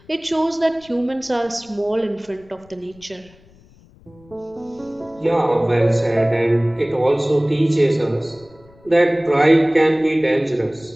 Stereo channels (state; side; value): noise; left; rumble, 27 dB below the sound